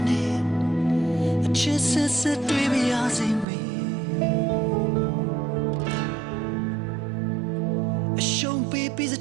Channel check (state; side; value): drops out; left; at 3.5 s